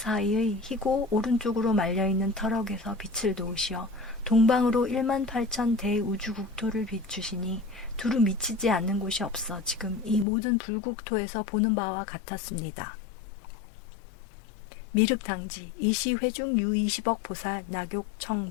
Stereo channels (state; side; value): drops out; right; at 10.2 s